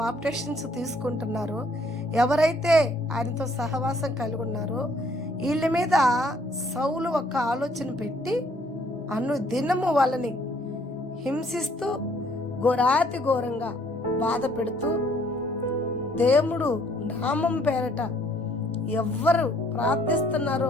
తీసుకుంటున్నారో, ఎవరైతే ఆయనతో సహవాసం కలిగి ఉన్నారో, వీళ్ళ మీద సౌలు ఒక ఆలోచన పెట్టి దినము వాళ్ళని హింసిస్తూ ఘోరాతి ఘోరంగా బాధ పెడుతూ, దేవుడు నామం పేరట ఎవ్వరు ప్రార్థిస్తున్నారో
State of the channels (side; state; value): both; normal; correlation 0.63